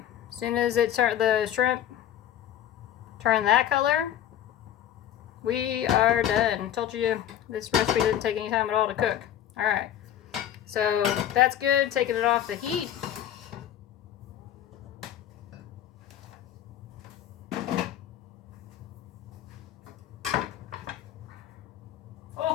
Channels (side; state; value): right; quieter; 11.1 dB